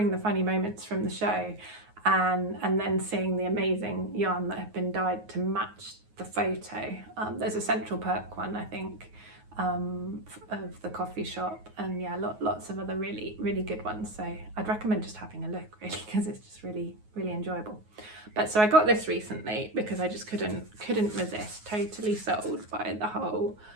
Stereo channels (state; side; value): late; left; 9.4 ms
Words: the funny moments from the show, and then seeing the amazing yarn that have been dyed to match the photo. There's a Central Perk one, I think, of the coffee shop, and yeah, lots of other really good ones. So I'd recommend just having a look, really, because it's just really enjoyable. But so I got this recently because I just couldn't resist. Totally sold by the whole